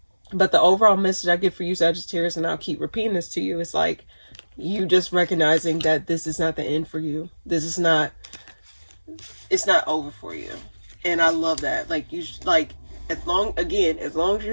But the overall message I get for you, Sagittarius, and I'll keep repeating this to you, is like you just recognizing that this is not the end for you. This is not, it's not over for you. And I love that. Like, you, like, as long as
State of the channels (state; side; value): inverted; both; correlation -1.00